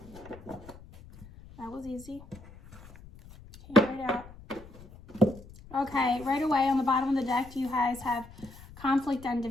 was easy. Came right out. Okay, right away on the bottom of the deck, you guys have conflict and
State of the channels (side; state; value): left; noise; rumble, 19 dB below the sound